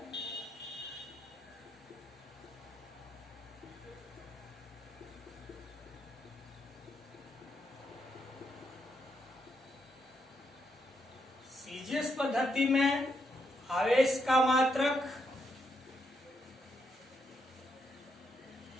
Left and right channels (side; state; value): both; normal; correlation 0.79